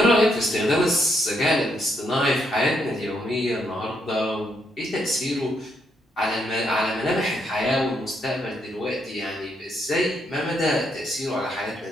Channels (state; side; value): normal; both; correlation 0.76